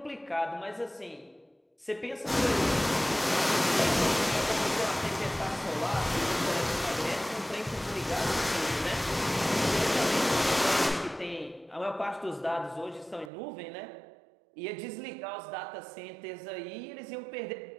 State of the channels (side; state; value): left; drops out; at 13.3 s